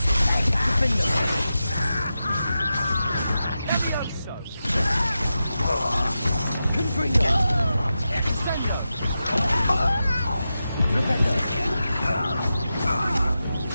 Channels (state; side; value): inverted; both; correlation -0.91